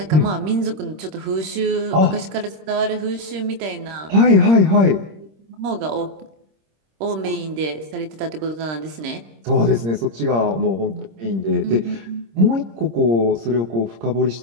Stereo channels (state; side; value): late; left; 26 ms